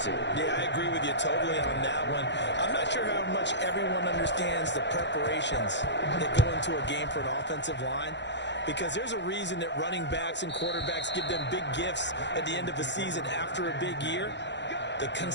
Yeah, I agree with you totally on that one. I'm not sure how much everyone understands the preparations that go into a game for an offensive line, because there's a reason that running backs and quarterbacks give them big gifts at the end of the season after a big year. The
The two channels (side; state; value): right; late; 0.52 ms